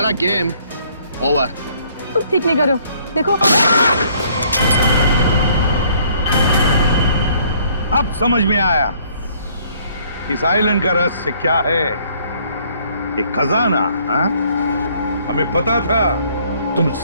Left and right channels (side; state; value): both; inverted; correlation -0.62